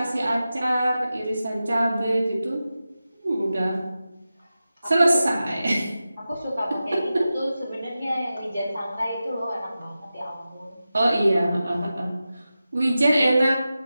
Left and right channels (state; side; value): inverted; both; correlation -0.93